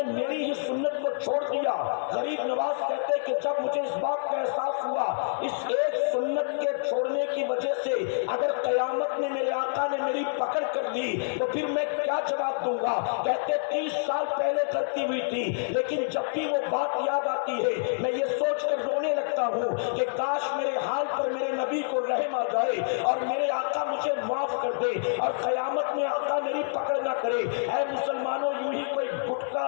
میری ہی سنت کو چھوڑ دیا۔ غریب نواز کہتے کہ جب مجھے اس بات کا احساس ہوا اس ایک سنت کے چھوڑنے کی وجہ سے اگر قیامت میں میرے آقا نے میری پکڑ کر لی تو پھر میں کیا جواب دوں گا؟ کہتے 30 سال پہلے غلطی ہوئی تھی، لیکن جب بھی وہ بات یاد آتی ہے میں یہ سوچ کر رونے لگتا ہوں کہ کاش میرے حال پر میرے نبی کو رحم آ جائے اور میرے آقا مجھے معاف کر دے اور قیامت میں آقا میری پکڑ نہ کرے۔ اے مسلمانوں، یوں ہی کوئی گٹکا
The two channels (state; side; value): silent; right; digital silence